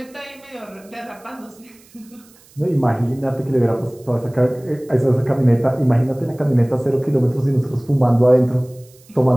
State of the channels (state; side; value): noise; right; hiss, 27 dB below the sound